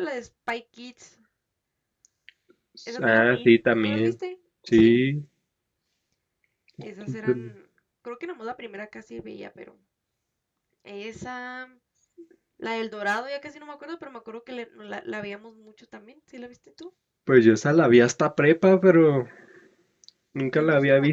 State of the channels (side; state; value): both; identical; correlation 1.00